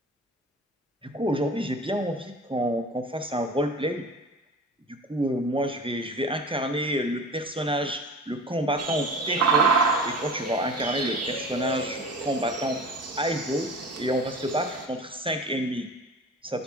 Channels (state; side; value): normal; both; correlation 0.37